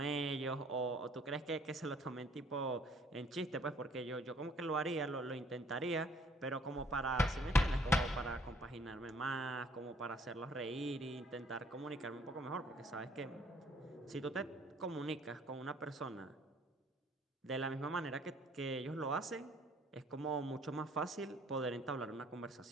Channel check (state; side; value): normal; both; correlation 0.60